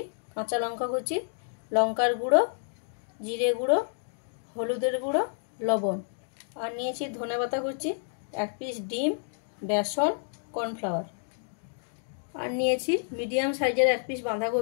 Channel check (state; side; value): silent; right; digital silence